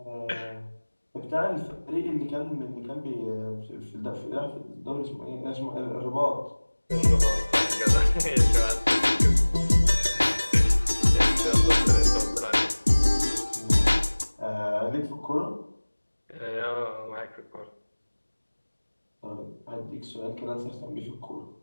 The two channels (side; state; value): both; inverted; correlation -1.00